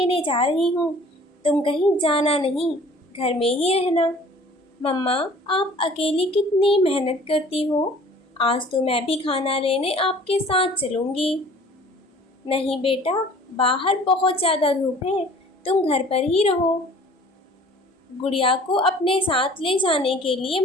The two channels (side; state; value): both; normal; correlation 0.50